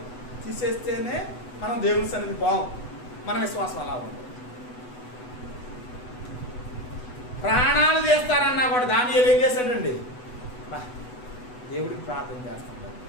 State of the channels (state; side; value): late; right; 8.0 ms